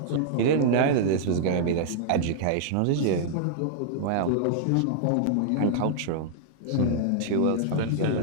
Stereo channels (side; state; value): both; different; correlation -0.01